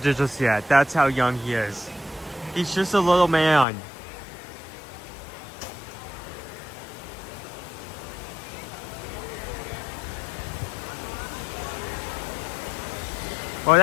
yet. That's how young he is. He's just a little man. Well,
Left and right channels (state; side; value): drops out; right; at 3.7 s